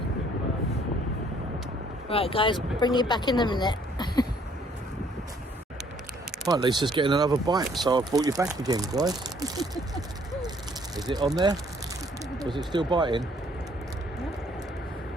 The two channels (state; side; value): normal; both; correlation 0.63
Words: Right, guys, bring you back in a minute. Right, Lisa's getting another bite, so I brought you back again, guys. Is it on there? Was it still biting?